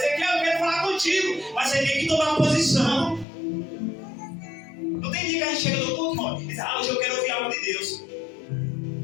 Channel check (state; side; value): drops out; right; at 3.2 s